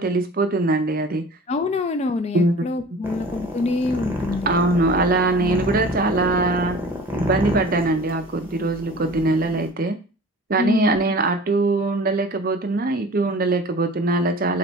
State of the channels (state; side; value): normal; both; correlation 0.42